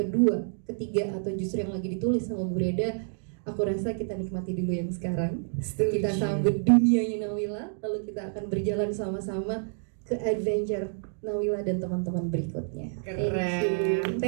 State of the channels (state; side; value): silent; left; digital silence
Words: ketiga, atau justru yang lagi ditulis sama Bu Reda? Aku rasa kita nikmati dulu yang sekarang. Kita sambut dunianya Nawila, lalu kita akan berjalan sama-sama ke adventure Nawila dan teman-teman berikutnya. Keren.